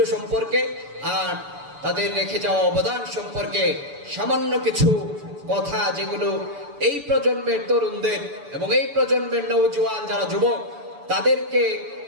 সম্পর্কে আর তাদের রেখে যাওয়া অবদান সম্পর্কে সামান্য কিছু কথা, যেগুলো এই প্রজন্মের তরুণদের এবং এই প্রজন্মের নওজোয়ান যারা যুবক তাদেরকে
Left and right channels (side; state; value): left; late; 6.9 ms